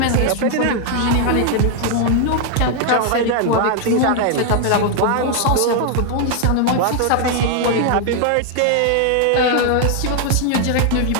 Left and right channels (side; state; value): both; different; correlation 0.00